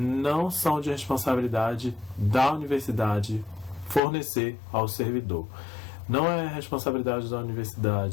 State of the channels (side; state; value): right; drops out; at 4.0 s